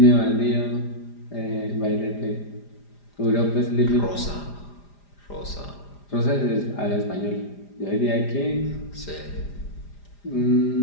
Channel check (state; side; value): late; right; 4.9 ms